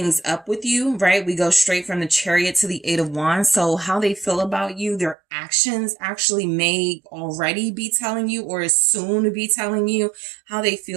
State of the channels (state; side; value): drops out; left; at 5.2 s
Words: up with you, right? We go straight from the Chariot to the Eight of Wands. So how they feel about you, their actions actually may already be telling you, or is soon to be telling you how they